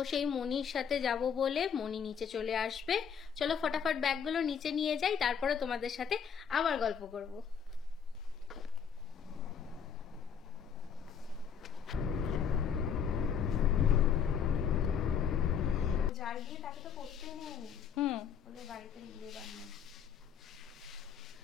সেই মণির সাথে যাব বলে মণি নিচে চলে আসবে। চলো ফটাফট ব্যাগগুলো নিচে নিয়ে যাই, তারপরে তোমাদের সাথে আবার গল্প করব। যার বিয়ে তাকে তো করতেই নেই। ওদের বাড়িতে বিয়ে বানায়।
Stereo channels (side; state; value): right; quieter; 7.4 dB